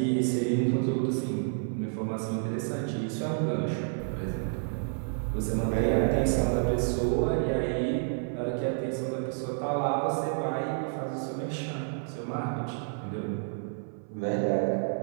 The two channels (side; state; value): left; silent; 58 dB below the other